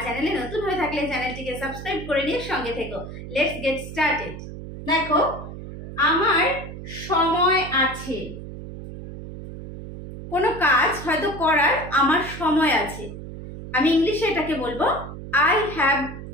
চ্যানেলে নতুন হয়ে থাকলে চ্যানেলটিকে সাবস্ক্রাইব করে নিয়ে সঙ্গে থেকো। Let's get started. দেখো, আমার সময় আছে। কোনো কাজ হয়তো করার আমার সময় আছে। আমি ইংলিশে এটাকে বলবো I have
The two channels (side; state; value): right; noise; hum, 11 dB below the sound